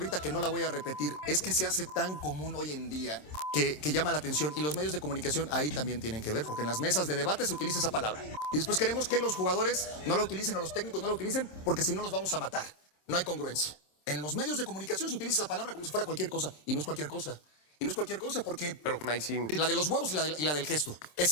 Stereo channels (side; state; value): right; late; 27 ms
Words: que no la voy a repetir, es que se hace tan común hoy en día que llama la atención. Y los medios de comunicación ahí también tienen que ver, porque en las mesas de debate se utiliza esa palabra. Y después queremos que los jugadores no la utilicen o los técnicos no la utilicen porque si no los vamos a matar. No hay congruencia. En los medios de comunicación se utiliza esa palabra como si fuera cualquier cosa. Y no es cualquier cosa. Y no es cualquier cosa porque... Pero ahí sí. La de los huevos y la del gesto.